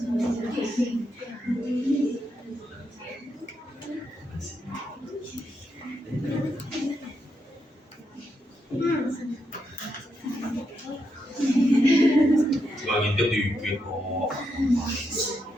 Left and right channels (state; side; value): normal; both; correlation 0.82